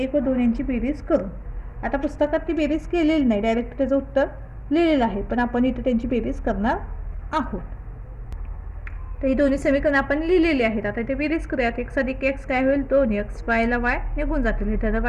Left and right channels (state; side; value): identical; both; correlation 1.00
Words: व 2 यांची बेरीज करून. आता पुस्तकात ती बेरीज केलेली नाही, डायरेक्ट त्याचं उत्तर लिहिलेलं आहे, पण आपण इथे त्यांची बेरीज करणार आहोत. तर ही दोन्ही समीकरण आपण लिहिलेली आहेत. आता इथे बेरीज करूयात. x अधिक x काय होईल 2x, yला y निघून जातील, हे धन